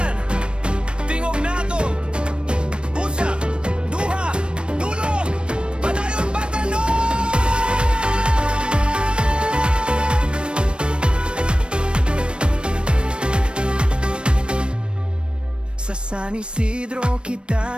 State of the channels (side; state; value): left; late; 0.056 ms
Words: tingog nato. Usa, duha, dulo, padayon batanon! Sa San Isidro